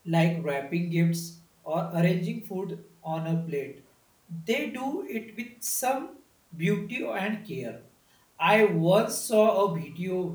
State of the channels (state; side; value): identical; both; correlation 1.00